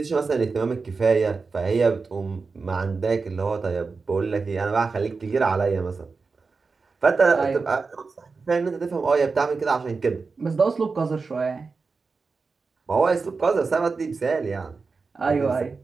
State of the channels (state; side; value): quieter; left; 4.5 dB